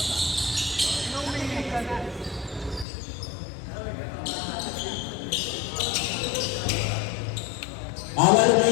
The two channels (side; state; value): right; drops out; at 2.9 s